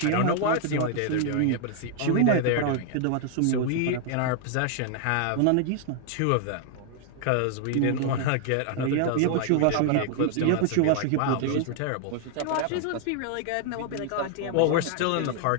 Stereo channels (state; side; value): different; both; correlation 0.00